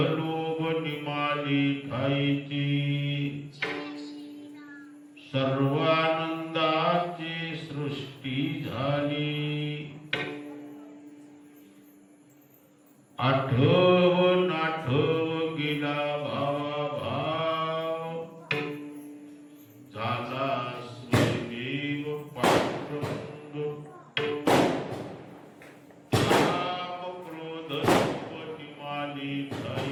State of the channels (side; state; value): both; identical; correlation 1.00